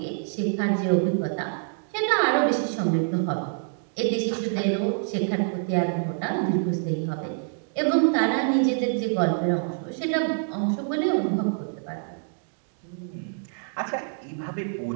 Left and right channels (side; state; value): left; silent; digital silence